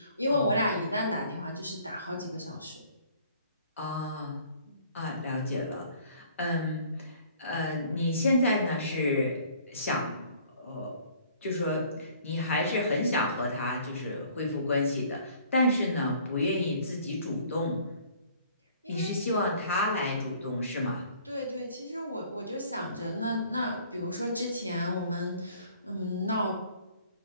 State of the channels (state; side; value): inverted; both; correlation -0.55